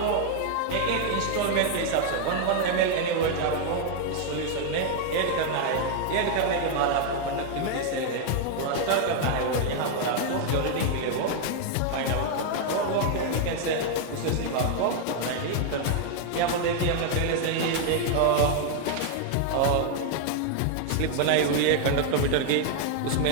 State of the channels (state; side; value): different; both; correlation 0.00